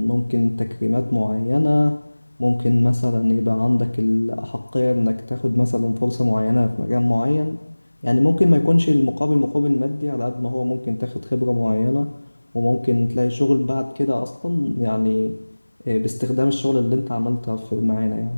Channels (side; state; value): both; inverted; correlation -1.00